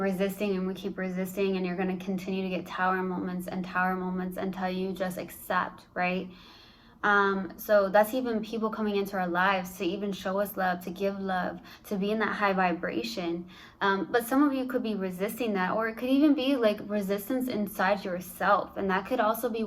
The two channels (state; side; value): identical; both; correlation 1.00